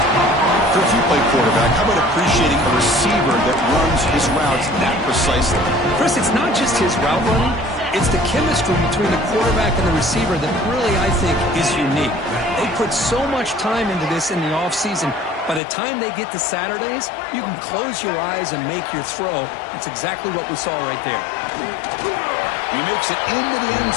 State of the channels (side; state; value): right; drops out; at 15.6 s